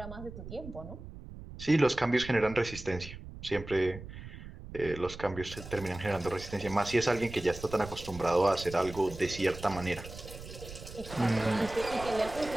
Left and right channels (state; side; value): noise; right; rumble, 13 dB below the sound